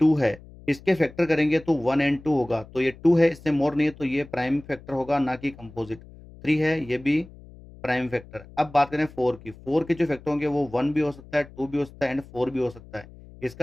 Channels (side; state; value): left; noise; hum, 20 dB below the sound